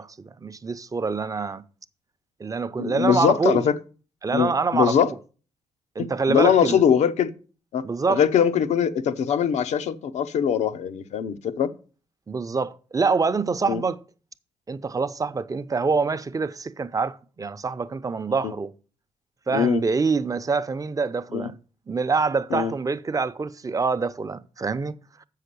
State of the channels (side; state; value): both; normal; correlation 0.49